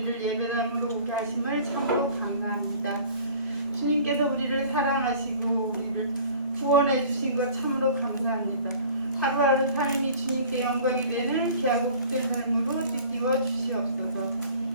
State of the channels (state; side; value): inverted; both; correlation -0.47